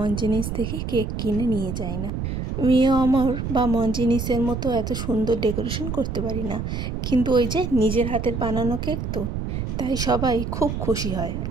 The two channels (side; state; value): right; noise; rumble, 3 dB below the sound